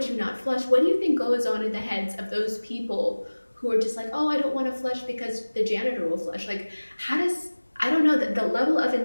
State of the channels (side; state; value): both; inverted; correlation -1.00